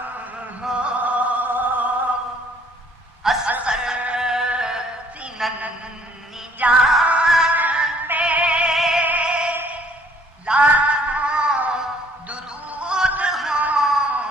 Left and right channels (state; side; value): normal; both; correlation 0.60